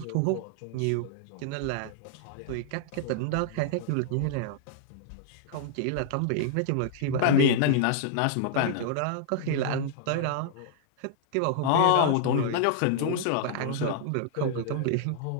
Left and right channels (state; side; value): different; both; correlation -0.01